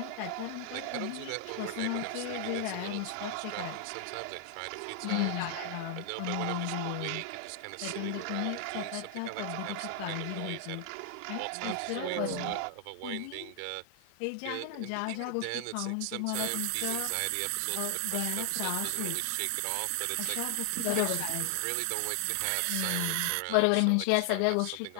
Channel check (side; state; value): both; different; correlation 0.00